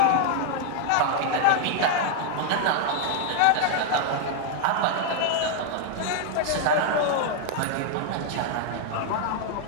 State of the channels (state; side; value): different; both; correlation 0.00